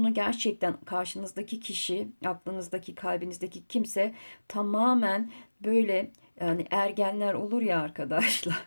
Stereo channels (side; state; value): both; inverted; correlation -1.00